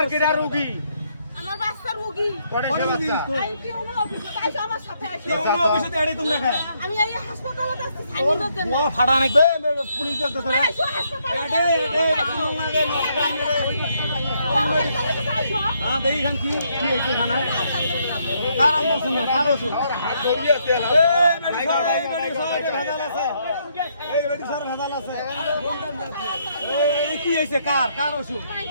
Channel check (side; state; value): both; inverted; correlation -0.73